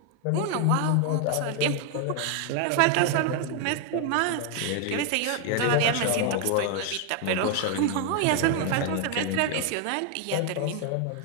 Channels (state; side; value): different; both; correlation 0.00